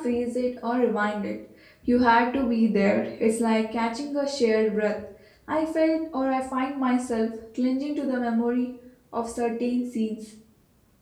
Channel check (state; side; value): identical; both; correlation 1.00